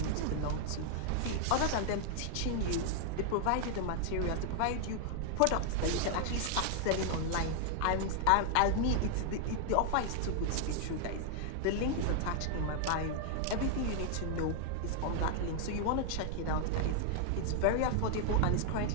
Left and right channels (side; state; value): both; different; correlation 0.00